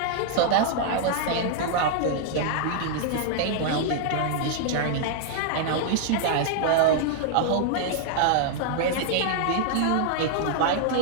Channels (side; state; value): both; different; correlation -0.01